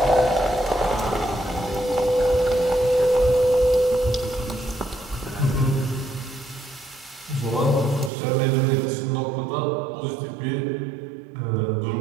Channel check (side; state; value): left; drops out; at 8.1 s